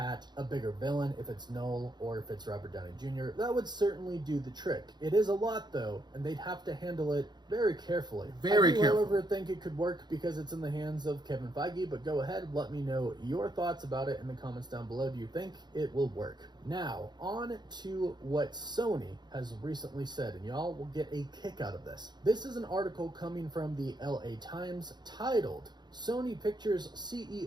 a bigger villain if it's Noel or if it's Robert Downey Jr. That would certainly do the trick. It is a lot though, and they'd have to handle it very carefully. I do, however, think it could work because it's in the hands of Kevin Feige, but go ahead, let me know your thoughts about it in the comments down below. Do you think it will work? Now, on to what Sony has recently said, and y'all will get a kick out of this. This is an article coming from the LA Times titled, Sony Pictures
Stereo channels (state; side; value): late; left; 0.21 ms